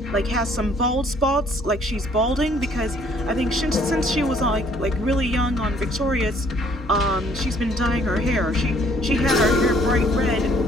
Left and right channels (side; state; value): both; normal; correlation 0.62